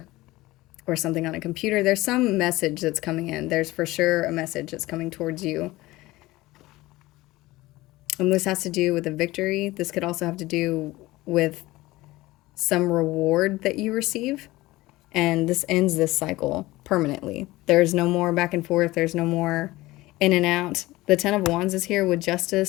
or something on a computer. There's some message that's coming in. There's for sure a message that's coming towards you. And this has to do with a victory. This could also have to do with some reward that you receive. And this ends this cycle permanently. There's no more back and forth. There's no more in and out. The Ten of Wands is here with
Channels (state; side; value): quieter; right; 19.0 dB